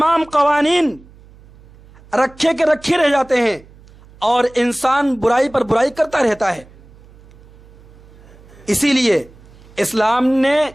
قوانین رکھے رہ جاتے ہیں اور انسان برائی پر برائی کرتا رہتا ہے. اسی لیے اسلام نے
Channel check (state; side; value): noise; right; hum, 24 dB below the sound